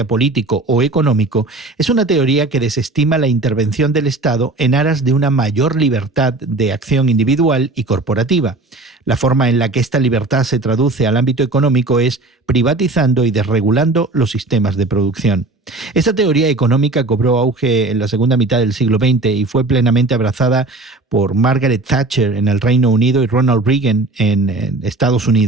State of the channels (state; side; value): quieter; left; 3.1 dB